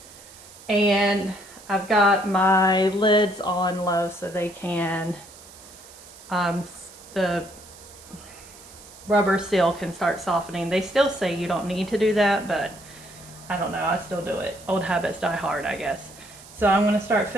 And I've got my lids on low so they can, the rubber seal can start softening. They still say you don't need to do that, but I don't know, I still do it. Old habits die hard, I guess. So I'm going to start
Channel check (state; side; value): noise; right; hiss, 20 dB below the sound